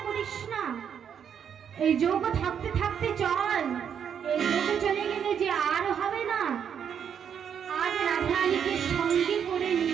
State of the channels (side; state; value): left; quieter; 8.0 dB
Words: করিস না, এই যোগ থাকতে থাকতে চল, এই যোগ চলে গেলে যে আর হবে না। আজ রাধারানীকে সঙ্গে করে